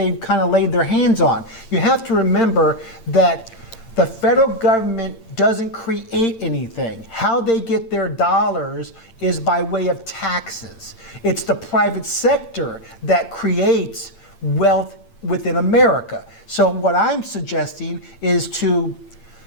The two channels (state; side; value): late; right; 8.8 ms